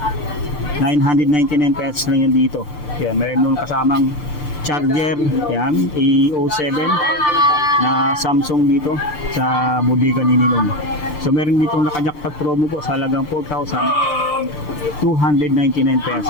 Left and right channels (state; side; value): late; right; 6.7 ms